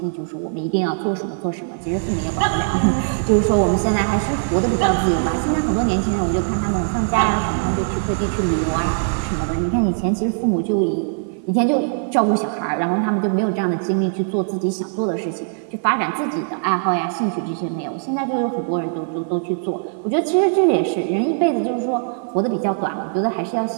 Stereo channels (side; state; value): left; silent; 56 dB below the other